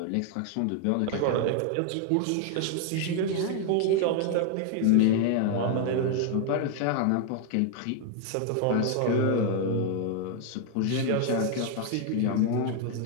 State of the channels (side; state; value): both; different; correlation 0.00